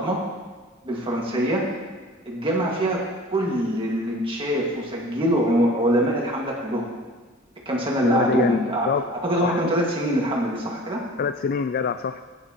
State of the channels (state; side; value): normal; both; correlation 0.43